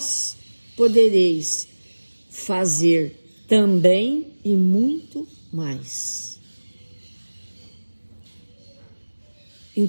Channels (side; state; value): both; inverted; correlation -1.00